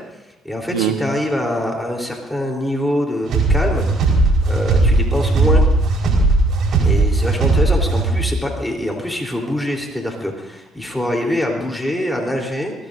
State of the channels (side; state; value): both; normal; correlation 0.65